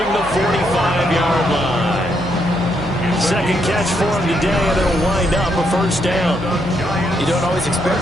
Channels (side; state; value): left; noise; hum, 15 dB below the sound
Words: the 45-yard line. 2nd catch for him today, and it'll wind up a 1st down. You don't always